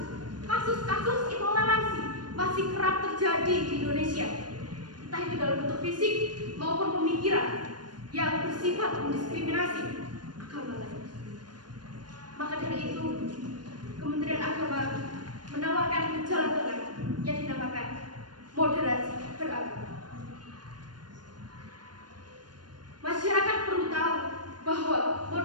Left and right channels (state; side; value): late; left; 0.70 ms